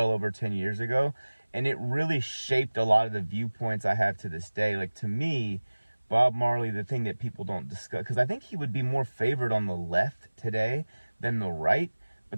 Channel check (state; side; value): inverted; both; correlation -1.00